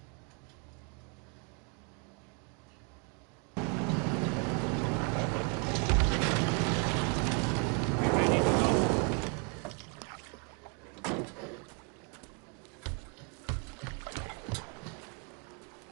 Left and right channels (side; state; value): left; quieter; 37.1 dB